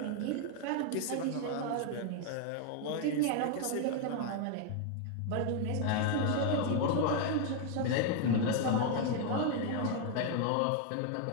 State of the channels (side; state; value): both; different; correlation 0.00